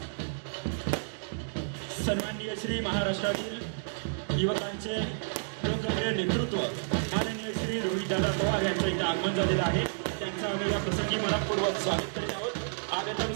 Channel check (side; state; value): left; silent; digital silence